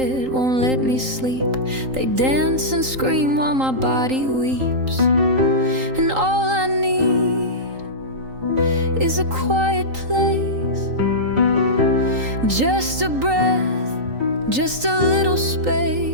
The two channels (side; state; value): left; late; 3.8 ms